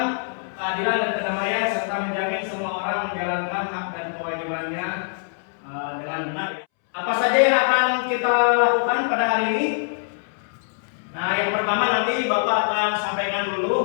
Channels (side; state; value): right; silent; 63 dB below the other